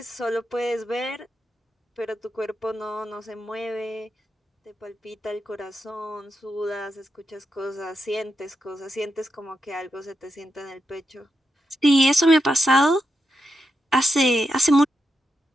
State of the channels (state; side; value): normal; both; correlation 0.85